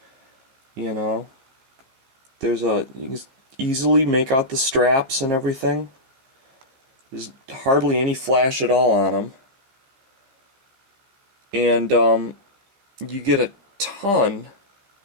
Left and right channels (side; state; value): left; late; 15 ms